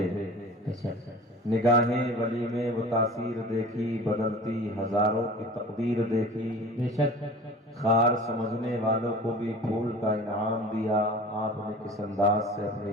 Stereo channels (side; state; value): both; normal; correlation 0.40